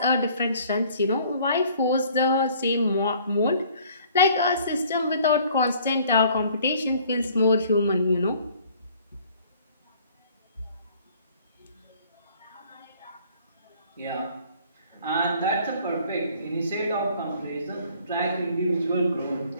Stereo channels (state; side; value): inverted; both; correlation -0.56